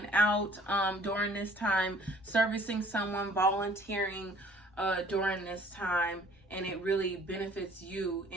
out during this time, servicing someone, volunteering during this time, and it really benefits you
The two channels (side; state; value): both; normal; correlation 0.55